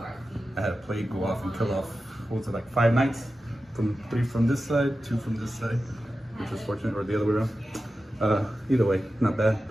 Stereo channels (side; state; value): both; normal; correlation 0.93